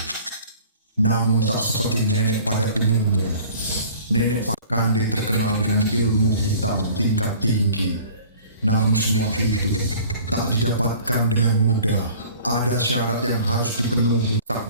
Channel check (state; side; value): inverted; both; correlation -0.48